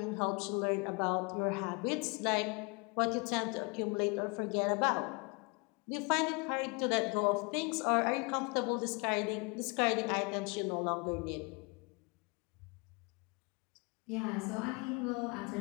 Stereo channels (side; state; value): right; quieter; 30.9 dB